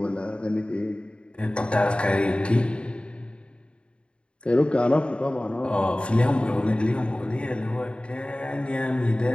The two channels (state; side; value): late; right; 0.055 ms